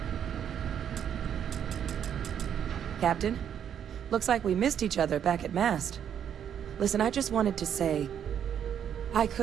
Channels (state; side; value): quieter; left; 8.9 dB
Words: Captain, looks like we missed each other back at Mast. Listen, I just wanted to say, I